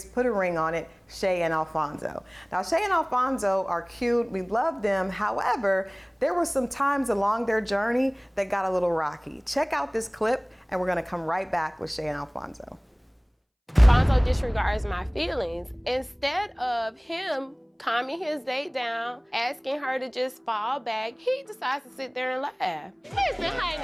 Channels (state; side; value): identical; both; correlation 1.00